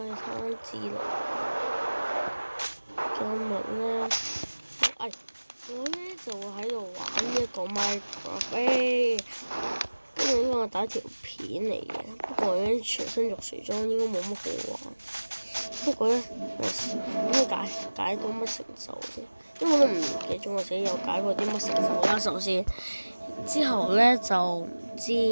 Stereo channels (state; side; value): inverted; both; correlation -1.00